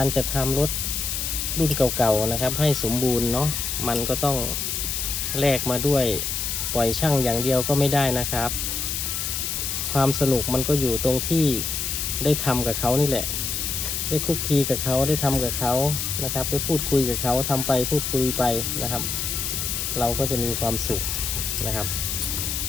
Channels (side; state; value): left; noise; hiss, 2 dB below the sound